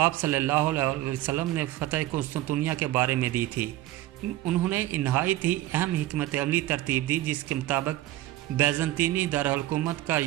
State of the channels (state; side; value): quieter; left; 15.4 dB